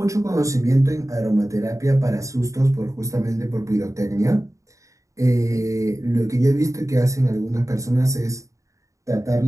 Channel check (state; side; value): late; left; 0.15 ms